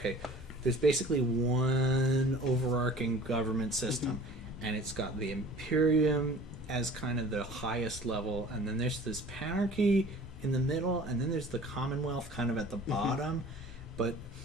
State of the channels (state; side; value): normal; both; correlation 0.46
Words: there's basically one overarching government system, and it's got the Imperium as kind of the highest level, and then there's this Panarchy in the middle, and then there's the Commonwealth kind of at the bottom. But